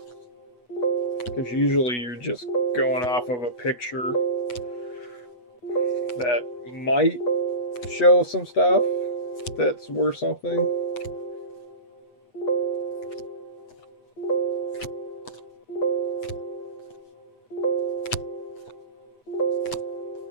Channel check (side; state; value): right; late; 8.1 ms